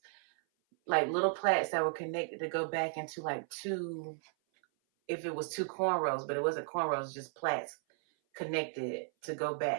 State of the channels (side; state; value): left; silent; 55 dB below the other